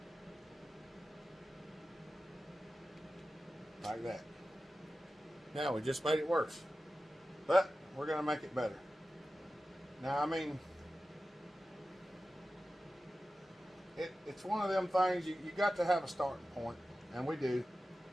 Like that. Now we just made it worse, but we're going to make it better. Now, I mean, it's one of them things you got to have a starting point, and we do.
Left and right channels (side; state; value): both; normal; correlation 0.94